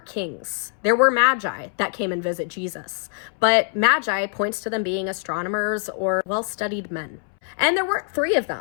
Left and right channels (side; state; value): right; silent; 63 dB below the other